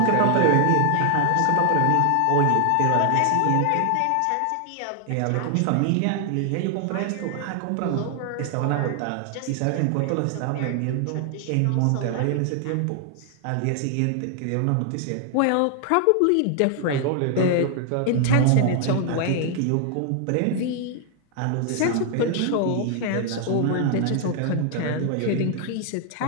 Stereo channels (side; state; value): both; different; correlation 0.00